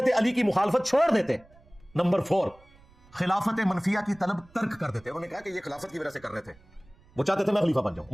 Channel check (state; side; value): noise; right; rumble, 27 dB below the sound